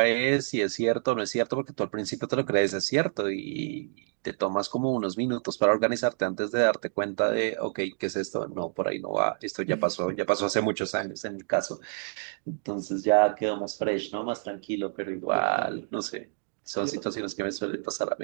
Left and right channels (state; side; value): silent; left; digital silence